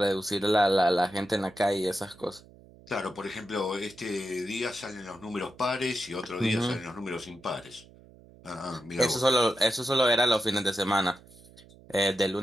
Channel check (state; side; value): noise; right; hum, 23 dB below the sound